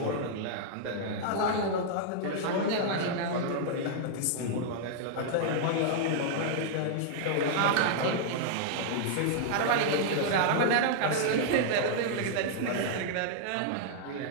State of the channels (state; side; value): different; both; correlation -0.01